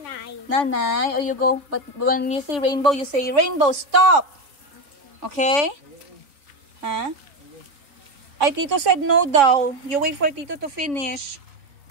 Nanay, oh you go. But when you say rainbow, you say rainbow, stop. Okay? Huh? Ay, Tito said no daw. You wait for Tito to finish.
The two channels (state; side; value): late; left; 3.0 ms